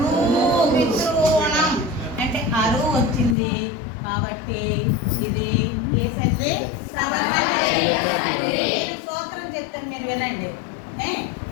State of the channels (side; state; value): right; drops out; at 3.4 s